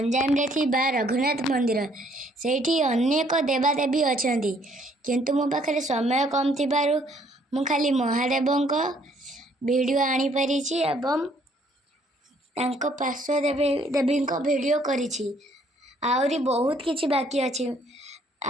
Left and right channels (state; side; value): normal; both; correlation 0.64